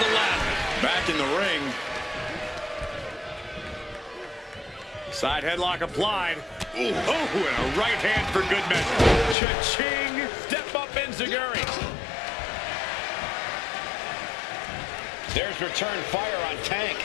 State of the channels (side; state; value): right; drops out; at 9.3 s